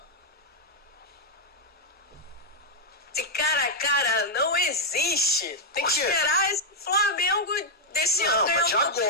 Esse cara a cara não existe. Tem que esperar esse Flamengo desse ano. Não, mas de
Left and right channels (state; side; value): normal; both; correlation -0.03